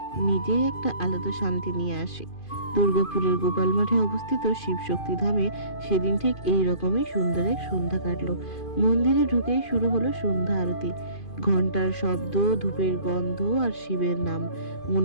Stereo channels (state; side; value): late; right; 2.5 ms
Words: নিজেই একটা আলাদা শান্তি নিয়ে আসে। দুর্গাপুরের গোপাল মাঠে অবস্থিত শিবশক্তি ধামে সেদিন ঠিক এই রকমই সুন্দর এক সন্ধ্যা কাটলো। মন্দিরে ঢুকেই শুরু হলো সন্ধ্যা আরতি। ঘন্টার শব্দ, ধূপের গন্ধ আর শিবের নাম।